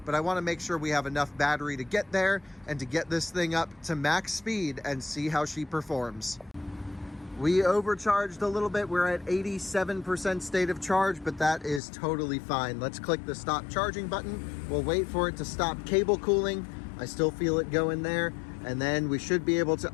but I want to make sure we have enough battery to get there and to get this thing up to max speed and see how she performs. We overcharged a little bit. We're at 87% state of charge, but that is totally fine. Let's click the stop charging button. We'll wait for it to stop cable cooling. I still feel it go in there. And then we should be able to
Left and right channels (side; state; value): right; drops out; at 11.8 s